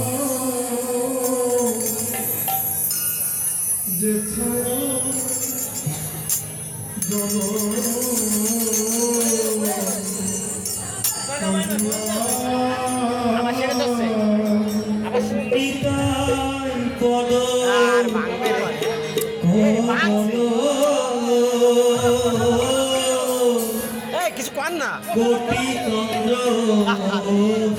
যে ছায়া কিছু কর না কোটি চন্দ্র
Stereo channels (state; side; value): identical; both; correlation 1.00